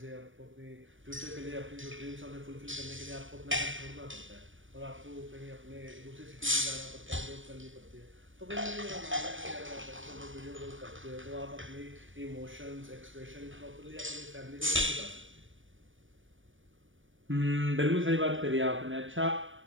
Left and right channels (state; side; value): late; left; 0.57 ms